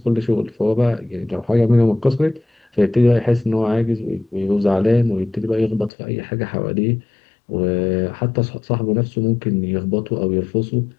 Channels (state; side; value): drops out; right; at 5.9 s